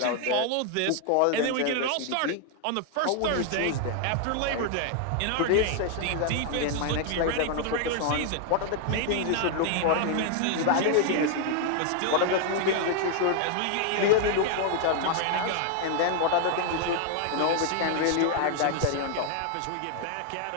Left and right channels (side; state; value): both; different; correlation 0.00